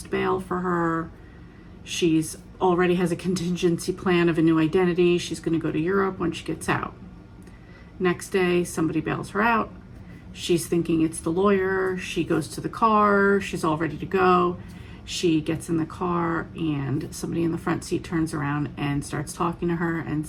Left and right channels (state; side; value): identical; both; correlation 1.00